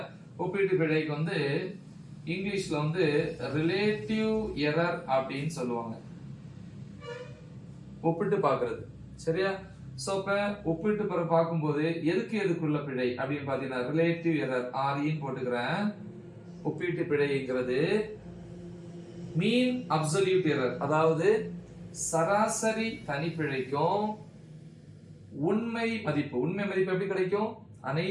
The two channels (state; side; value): identical; both; correlation 1.00